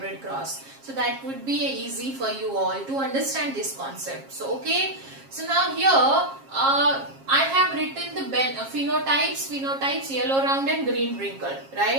cross. So that would be easy for you all to understand this concept. So okay. So now here I have written the phenotypes yellow round and green wrinkle,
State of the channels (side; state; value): left; late; 7.4 ms